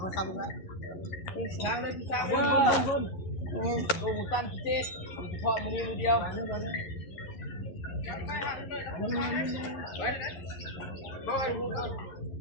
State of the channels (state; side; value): late; right; 11 ms